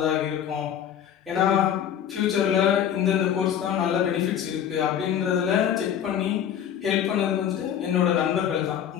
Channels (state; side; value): quieter; right; 9.4 dB